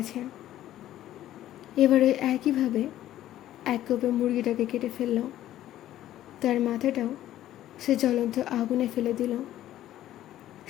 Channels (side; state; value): right; quieter; 13.2 dB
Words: এবার ওই একইভাবে এক কোপে মুরগিটাকে কেটে ফেলল। তার মাথাটাও সে জ্বলন্ত আগুনে ফেলে দিল।